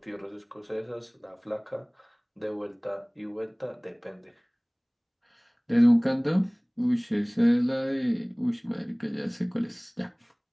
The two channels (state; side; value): identical; both; correlation 1.00